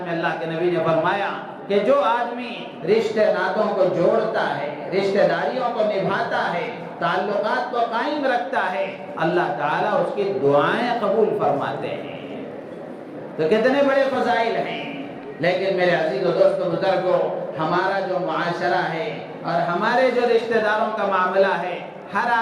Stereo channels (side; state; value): both; identical; correlation 1.00